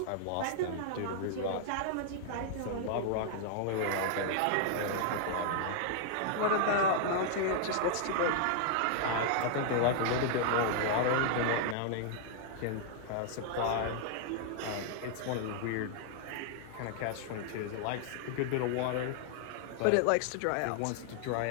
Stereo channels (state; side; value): different; both; correlation -0.01